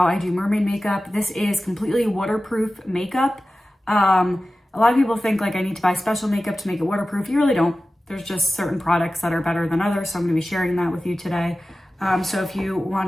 I do mermaid makeup. This is completely waterproof makeup. A lot of people think like I need to buy special makeup to make it waterproof. You really don't. There's just certain products that are better than others. So I'm going to be sharing that with you today. So if you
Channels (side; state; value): both; normal; correlation 0.95